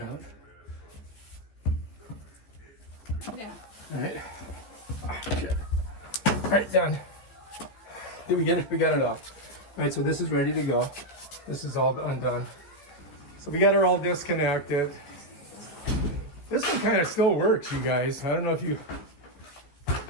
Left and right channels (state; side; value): late; right; 15 ms